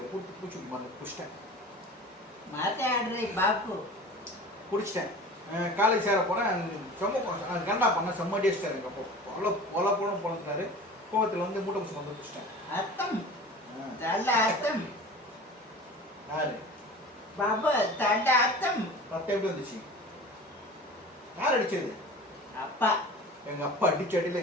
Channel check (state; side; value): normal; both; correlation 0.39